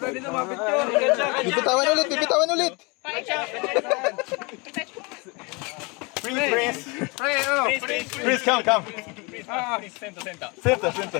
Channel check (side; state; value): right; quieter; 28.6 dB